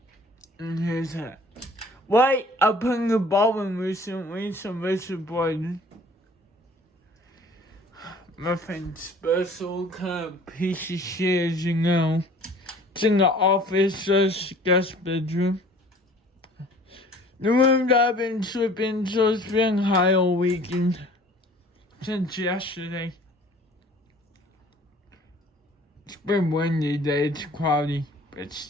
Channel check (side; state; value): both; normal; correlation 0.50